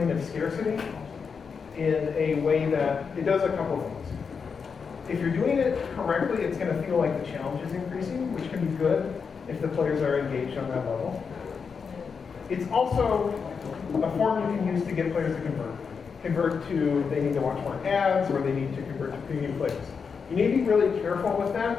of scarcity in a way that it does a couple things. If you're doing it correctly, it's going to feel like the challenge is increasing, which can be good if the players are engaged on that level. It's also a form you can use to get players to convert. Convert to, they need to watch more ads, or they need to convert to premium players. You need to be really careful with that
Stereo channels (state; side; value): quieter; right; 5.8 dB